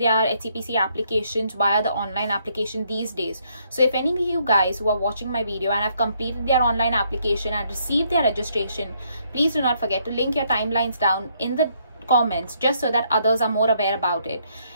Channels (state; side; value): inverted; both; correlation -0.71